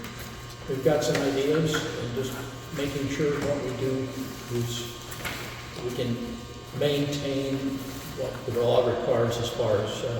We've got some ideas, and just making sure what we do is we can maintain what the law requires as far as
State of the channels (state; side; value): identical; both; correlation 1.00